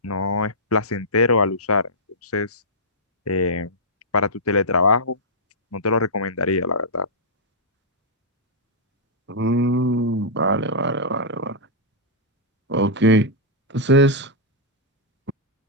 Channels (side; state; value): both; normal; correlation -0.11